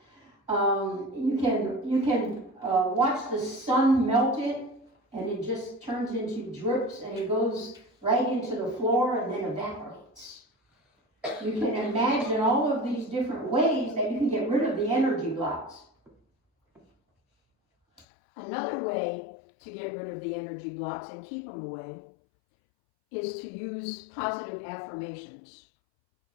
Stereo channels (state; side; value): drops out; right; at 18.1 s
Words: You can watch the sun melt it, and it just turns into drips, and it goes right into the floor and then evaporates. You can imagine all of these different ways that you can get rid of the energy blocks. Another way to get rid of the energy blocks and keep them away is to use positive affirmations.